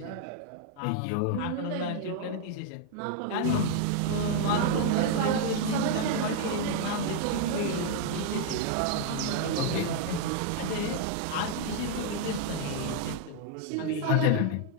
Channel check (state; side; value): different; both; correlation 0.00